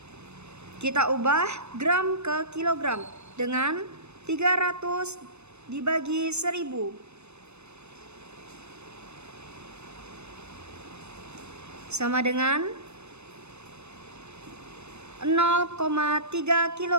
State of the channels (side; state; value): left; late; 0.81 ms